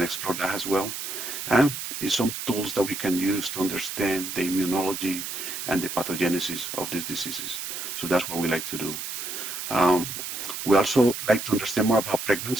that as well. And some tools that we can use to understand the immunology and the pathogenesis of these diseases. So that's what we like to do. We also like to understand more about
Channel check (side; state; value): right; noise; hiss, 6 dB below the sound